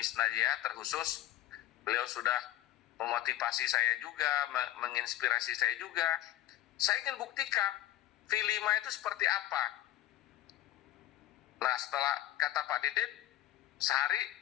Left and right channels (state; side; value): quieter; right; 14.0 dB